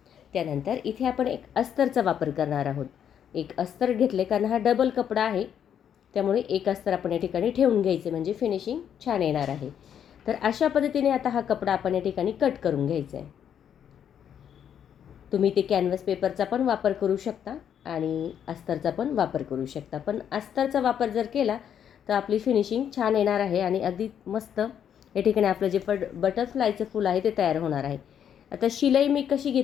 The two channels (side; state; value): right; quieter; 8.9 dB